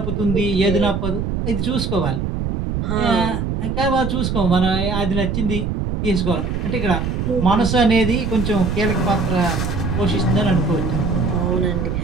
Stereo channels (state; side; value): noise; right; rumble, 1 dB below the sound